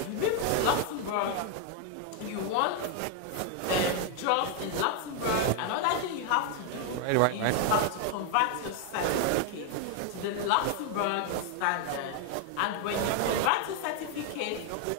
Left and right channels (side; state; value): both; different; correlation 0.01